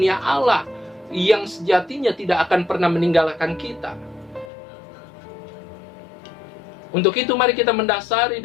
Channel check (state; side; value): drops out; right; at 4.5 s